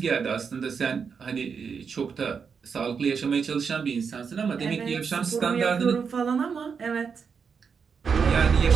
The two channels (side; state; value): left; quieter; 6.1 dB